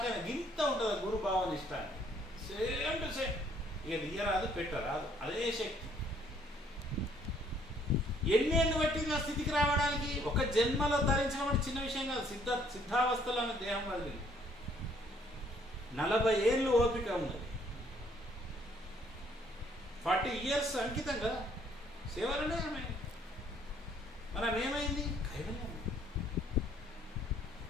అయినా. గింత ఉంటుంది గురు భావన ఇష్టాన్ని. Same to same. ఇక తీయరాదు, పెట్టరాదు, అదే శక్తి. ఎన్నేళ్ళు పట్టింది ఆ స్థితికి రావడానికి? ఒక జన్మలో ధరించడం అంటే చిన్న విషయం కాదు. సిద్ధావస్థలో ఆమె దేహం వదిలింది. 40 ఏళ్ళు ఓపిక ఉన్నది. 40 years అంకితం కదా సేవలనే ఆమె. మనం ఏమైంది? కైవల్యం.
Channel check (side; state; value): both; normal; correlation 0.64